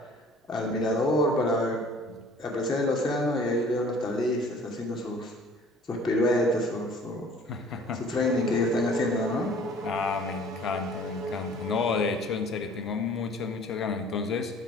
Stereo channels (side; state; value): both; normal; correlation 0.51